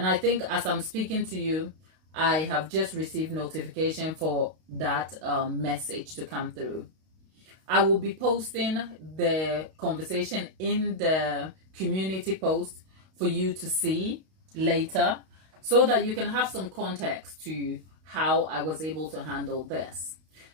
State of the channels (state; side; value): late; left; 32 ms